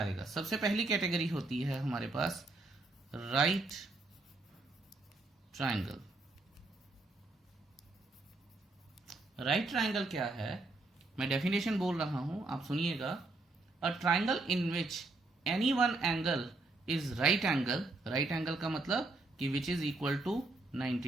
सबसे पहली कैटेगरी होती है हमारे पास राइट ट्राइंगल। राइट ट्राइंगल क्या है, मैं डेफिनेशन बोल रहा हूं, आप सुनिएगा। A triangle in which any one angle is right angle. Right angle का मतलब कि which is equal to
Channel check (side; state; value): left; quieter; 3.2 dB